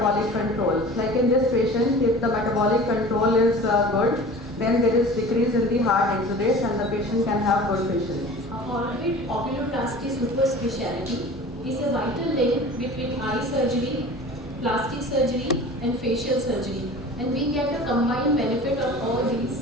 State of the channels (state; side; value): normal; both; correlation 0.40